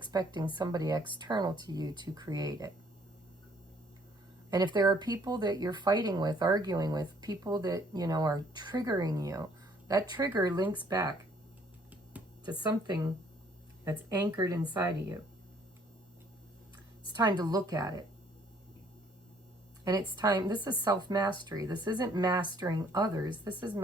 somebody external to you to create it. And if there are people that you're fighting with, arguing with, people that, are triggering you, that trigger links back to something that's anchored inside of you. It's time to look at it. And it's time, this is self-mastery. This isn't mastering others. This is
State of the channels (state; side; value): normal; both; correlation 0.62